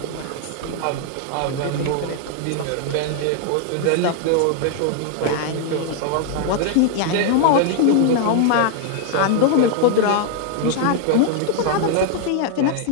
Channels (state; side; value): different; both; correlation 0.00